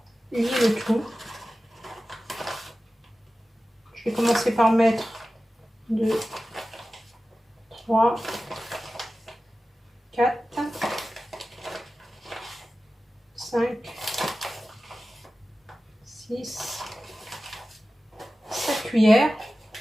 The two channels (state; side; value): normal; both; correlation 0.95